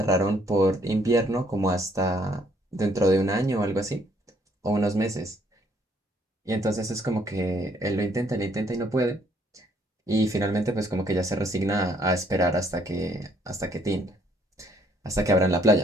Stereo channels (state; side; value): normal; both; correlation 0.67